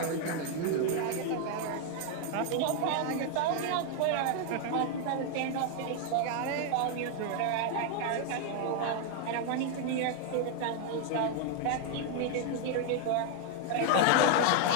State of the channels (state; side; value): different; both; correlation 0.00